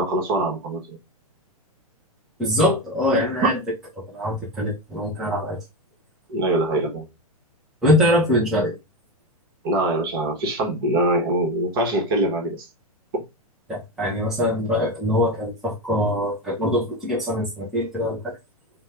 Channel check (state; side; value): normal; both; correlation 0.18